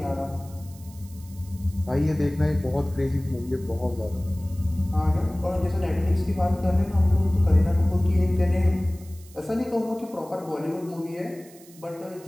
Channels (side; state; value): right; noise; hiss, 23 dB below the sound